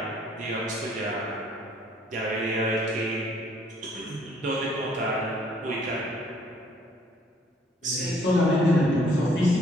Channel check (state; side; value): normal; both; correlation 0.62